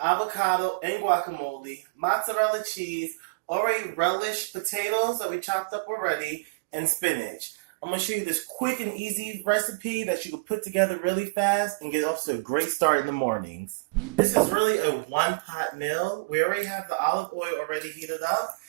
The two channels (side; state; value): left; quieter; 32.3 dB